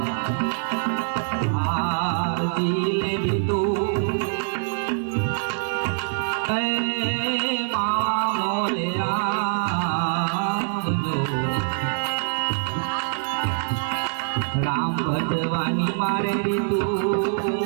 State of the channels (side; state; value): left; silent; digital silence